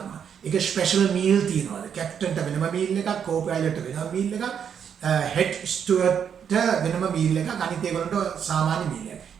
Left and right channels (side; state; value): left; quieter; 7.9 dB